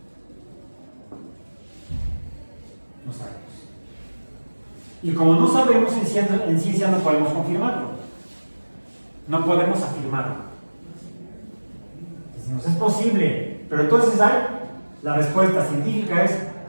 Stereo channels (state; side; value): inverted; both; correlation -1.00